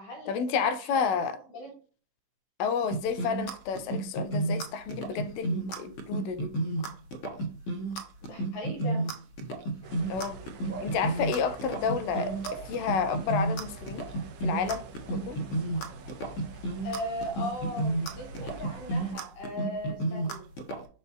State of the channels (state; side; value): late; right; 15 ms